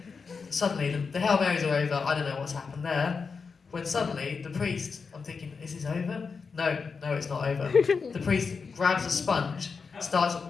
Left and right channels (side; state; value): right; quieter; 5.2 dB